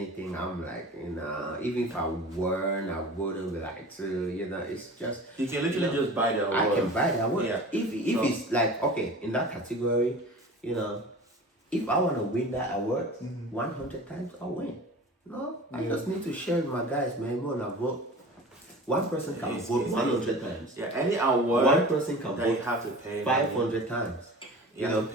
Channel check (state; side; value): normal; both; correlation 0.38